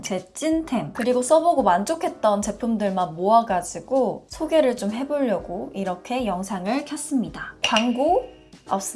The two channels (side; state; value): both; identical; correlation 1.00